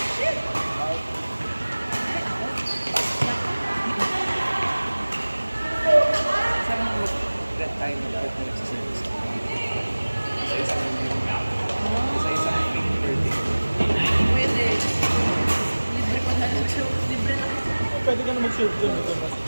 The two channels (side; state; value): both; inverted; correlation -1.00